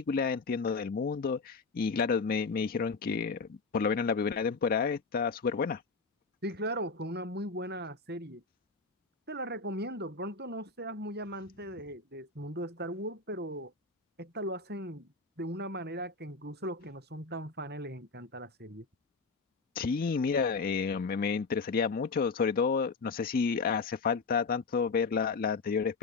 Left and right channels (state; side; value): quieter; right; 4.4 dB